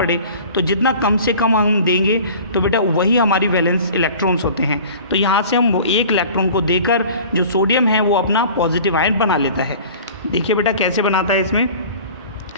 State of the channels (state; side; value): inverted; both; correlation -0.43